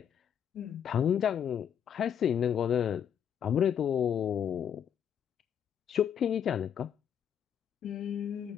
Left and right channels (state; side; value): quieter; right; 8.6 dB